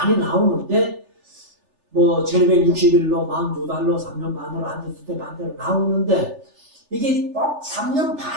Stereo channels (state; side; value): late; left; 3.4 ms